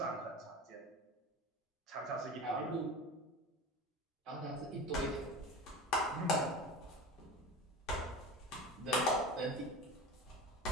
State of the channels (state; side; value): normal; both; correlation 0.31